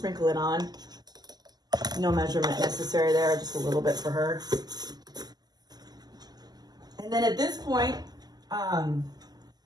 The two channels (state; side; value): late; left; 0.20 ms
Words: it on. No measurement necessary there, just a little bit for her. And then at this point,